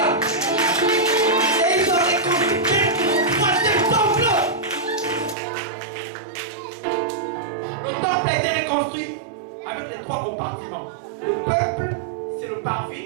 Et ils ont reconstruit le troisième temple. Le temple a été reconstruit avec les 3 compartiments. Le peuple, c'est le parvis,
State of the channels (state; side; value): drops out; left; at 5.4 s